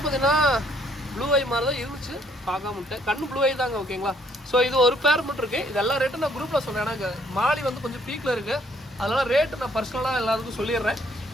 பார்த்தீங்கன்னா ப்ளூ ஐ மாதிரி தான் இருந்துச்சு, பார்க்காம விட்டேன். கண்ணு ப்ளூ ஐ தாங்க ஓகேங்களா. ஸோ இது ஒரு பேர் மட்டும் இருக்குது. இது எல்லா ரேட்டும் நான் குரூப்பில் சொன்னேன். எனக்கு மாலி வந்து கொஞ்சம் பீக்கில் இருக்குது, அதனால் ரேட்டு நான் பர்சனலாக எல்லாத்துக்கும் சொல்லிடுறேன்.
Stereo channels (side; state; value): both; normal; correlation 0.66